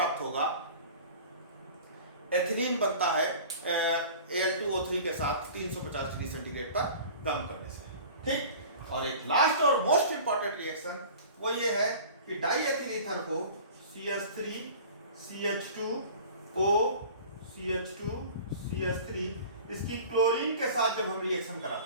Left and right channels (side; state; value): both; inverted; correlation -0.41